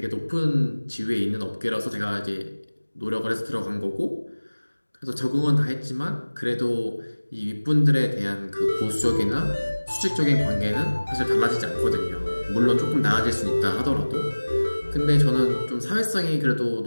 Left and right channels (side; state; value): both; inverted; correlation -1.00